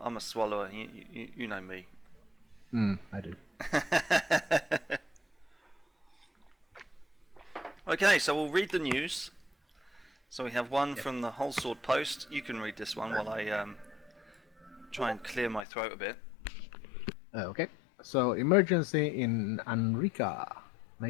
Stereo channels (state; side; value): drops out; right; at 15.7 s